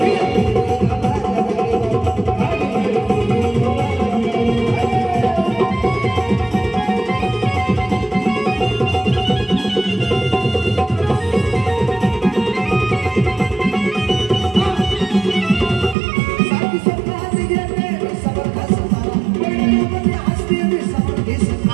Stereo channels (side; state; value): left; drops out; at 16.0 s